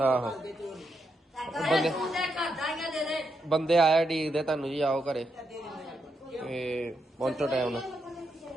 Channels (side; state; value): both; normal; correlation 0.82